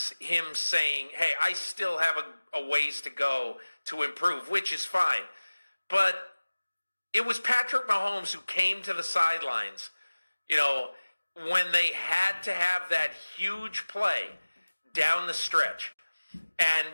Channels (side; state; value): both; inverted; correlation -1.00